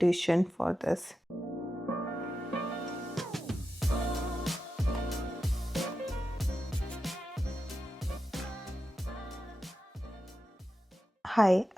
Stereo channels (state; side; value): normal; both; correlation 0.90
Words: for this. Hi,